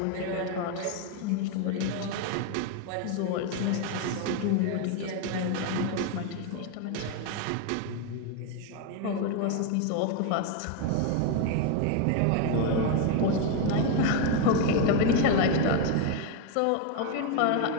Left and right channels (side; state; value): both; different; correlation 0.01